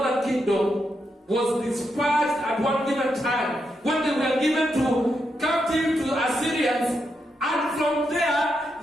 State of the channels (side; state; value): both; normal; correlation 0.83